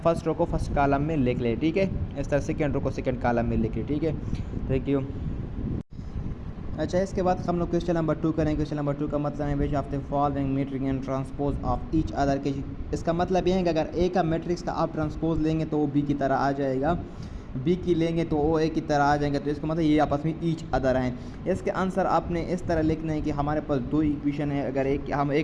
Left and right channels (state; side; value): identical; both; correlation 1.00